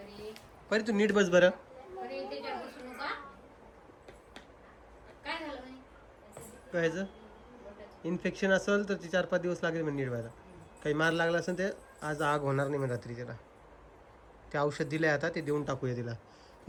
परी तू नीट बस बरं. काय इन्फेक्शन असेल तर ती 4-5 दिवस लागेल म्हणजे नीट व्हायला. काही मार लागला असेल ते आज आग होणार नाही म्हणजे रात्री. त्याला ते औषध दिलंय आता, ते देऊन टाकूया तिला.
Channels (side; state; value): both; identical; correlation 1.00